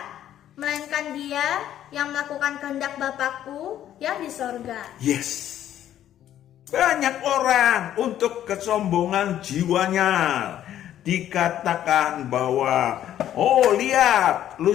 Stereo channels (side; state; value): right; quieter; 11.5 dB